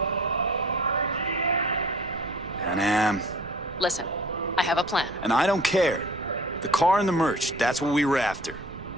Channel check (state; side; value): noise; right; rumble, 17 dB below the sound